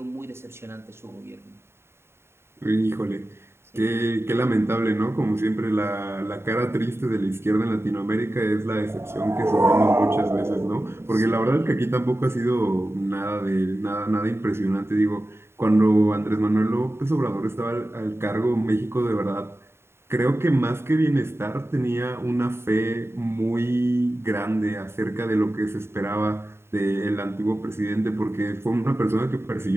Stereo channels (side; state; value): left; late; 0.12 ms